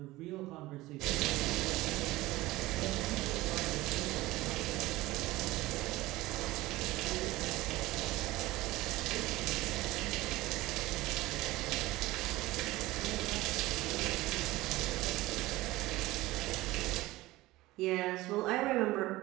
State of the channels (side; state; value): left; quieter; 18.6 dB